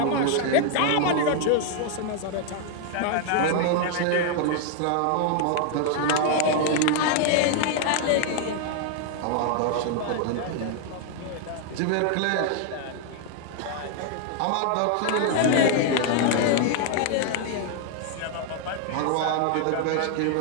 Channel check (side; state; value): both; different; correlation 0.00